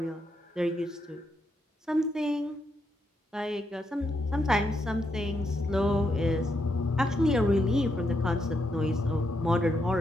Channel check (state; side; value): normal; both; correlation 0.80